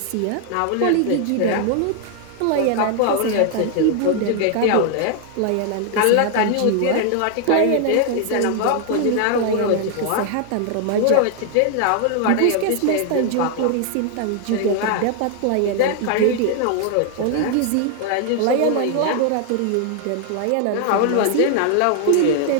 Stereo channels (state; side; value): different; both; correlation 0.00